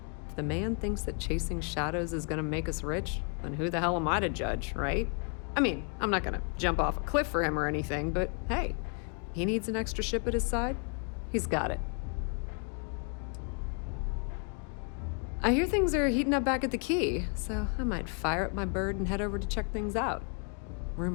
If the man thinks that chasing shadows is gonna make us rich, then who the hell am I to judge, right? I mean, I'm not gonna jump off a cliff for him or anything, but hey, he needs an extra ship at his side, he's got it. I hear things are heating up back at the Key, so I might fire up my bird and head over to check things out.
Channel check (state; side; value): quieter; right; 39.2 dB